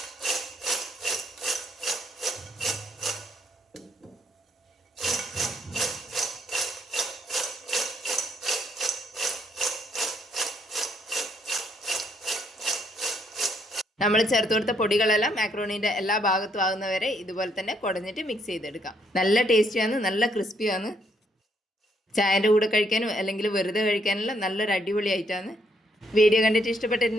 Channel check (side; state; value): both; normal; correlation 0.72